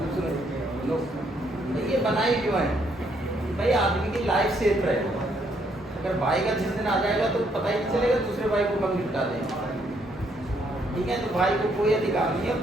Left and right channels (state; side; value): normal; both; correlation 0.71